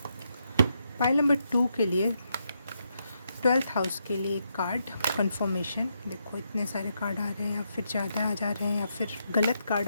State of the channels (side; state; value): both; inverted; correlation -0.80